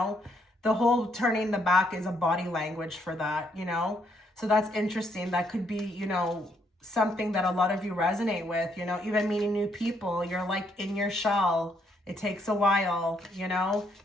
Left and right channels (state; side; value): normal; both; correlation 0.72